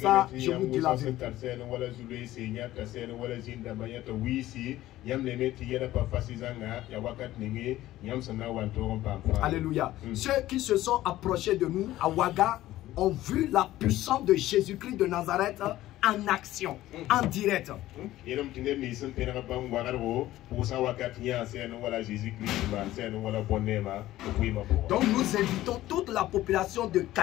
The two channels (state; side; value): quieter; right; 15.2 dB